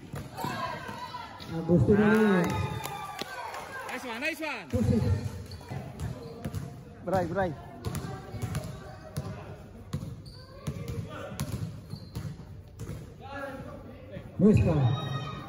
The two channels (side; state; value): both; identical; correlation 1.00